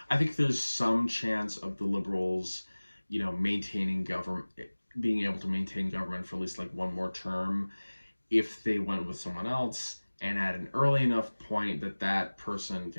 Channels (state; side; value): inverted; both; correlation -1.00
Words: I think there's some chance of the Liberals, you know, maintaining government, being able to maintain government for at least like one more term if they went with someone else, and at an early enough point that that person